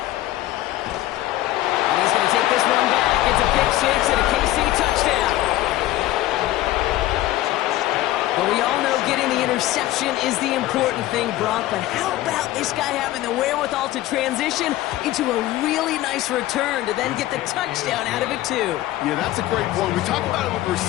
And he's going to take this one back. It's a pick 6 and a KC touchdown. But we all know getting the interception is the important thing, Brock. But how about this guy having the wherewithal to transition into a really nice return to then get the touchdown out of it, too? Yeah, that's a great point. We talk about it with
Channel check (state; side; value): quieter; right; 15.5 dB